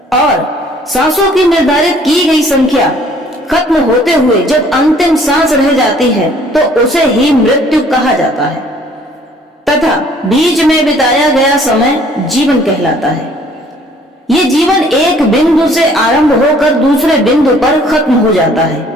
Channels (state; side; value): normal; both; correlation 0.57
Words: और सांसों की निर्धारित की गई संख्या खत्म होते हुए जब अंतिम सांस रह जाती है तो उसे ही मृत्यु कहा जाता है, तथा बीच में बिताया गया समय जीवन कहलाता है। ये जीवन एक बिंदु से आरंभ होकर दूसरे बिंदु पर खत्म हो जाता